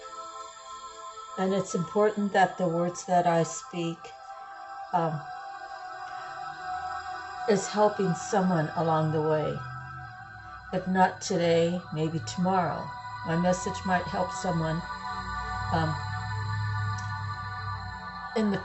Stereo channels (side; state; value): both; identical; correlation 1.00